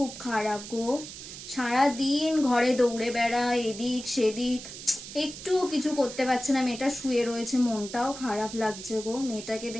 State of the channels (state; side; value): noise; right; hiss, 12 dB below the sound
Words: খারাপ গো। সারাদিন ঘরে দৌড়ে বেড়ায়, এদিক সেদিক, একটু কিছু করতে পারছে না। মেয়েটা শুয়ে রয়েছে, মনটাও খারাপ লাগছে গো। মেয়েটাকে